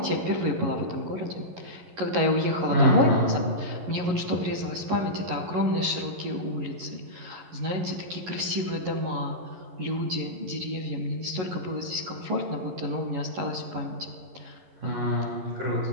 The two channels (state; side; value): late; left; 11 ms